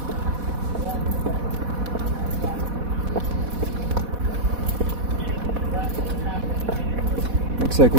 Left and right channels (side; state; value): left; late; 4.1 ms